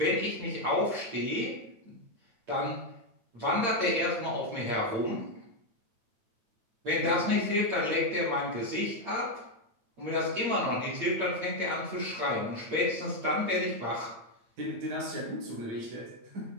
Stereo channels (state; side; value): late; left; 8.7 ms